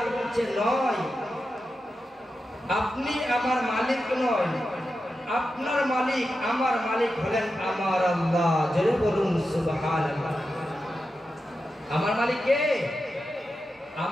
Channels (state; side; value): normal; both; correlation 0.90